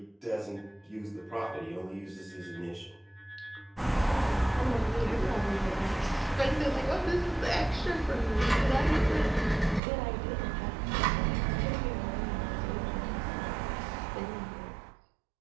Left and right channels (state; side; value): drops out; left; at 9.8 s